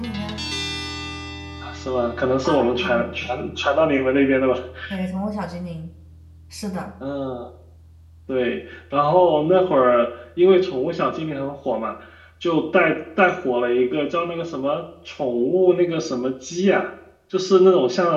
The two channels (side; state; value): both; identical; correlation 1.00